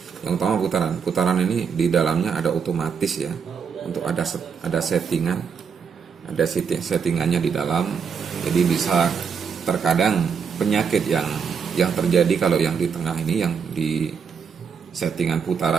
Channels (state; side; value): quieter; left; 6.4 dB